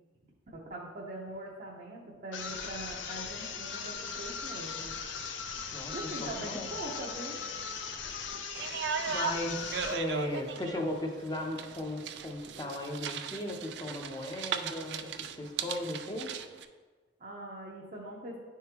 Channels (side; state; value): both; normal; correlation 0.21